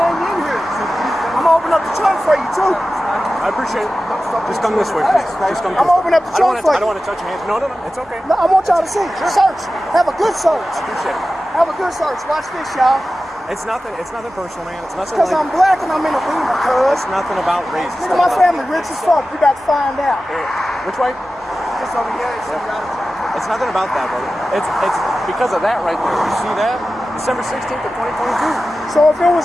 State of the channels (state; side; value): normal; both; correlation 0.94